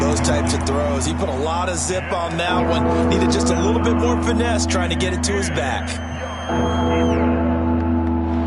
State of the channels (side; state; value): both; identical; correlation 1.00